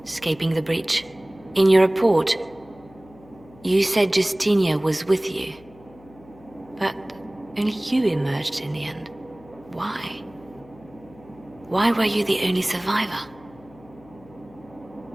escaping the breach. In your report, you said Justinia was with you. But only you emerged in the end. Why? Why were you the only survivor?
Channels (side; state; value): left; noise; hum, 24 dB below the sound